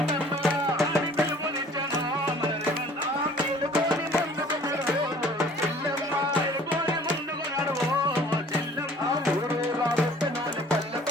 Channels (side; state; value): both; normal; correlation 0.51